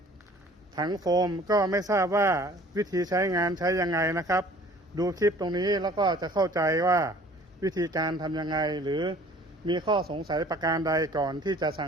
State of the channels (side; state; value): both; normal; correlation 0.51